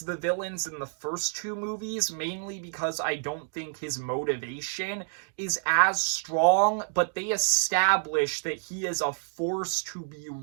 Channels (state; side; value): silent; left; digital silence